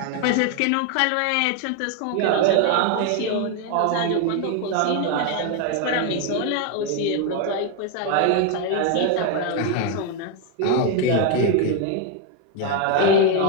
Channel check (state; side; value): different; both; correlation 0.01